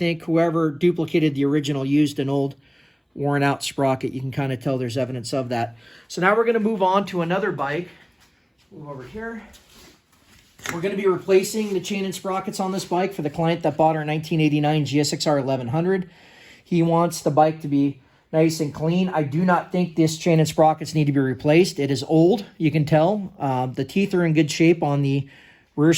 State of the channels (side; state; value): both; identical; correlation 1.00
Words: whoever duplicated the original used an old worn out sprocket. You can kind of tell there's evidence of that. So now we're going to move on to another bike. Move over here. We're going to be replacing the chain and sprockets on this bike for the client that bought our 1989 GSXR 1100. He wants the bike to be nice and clean. I do not think this chain and sprockets need to be replaced. It is old, you can tell. The teeth are in good shape on the rear